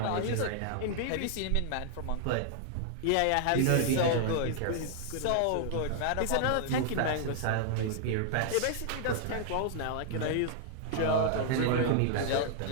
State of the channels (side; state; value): both; different; correlation -0.01